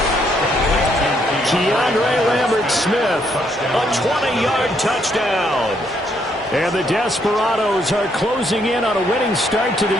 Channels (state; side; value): normal; both; correlation 0.72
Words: Keandre Lambert-Smith, a 20-yard touchdown. And the Desperados are closing in on a winning start to the